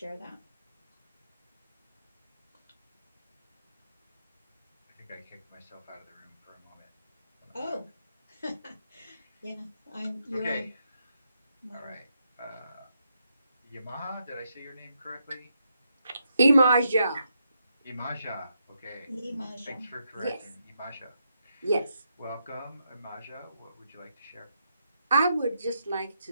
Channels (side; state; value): both; inverted; correlation -0.81